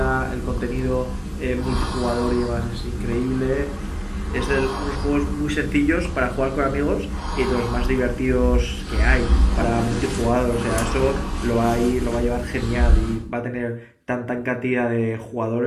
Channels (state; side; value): identical; both; correlation 1.00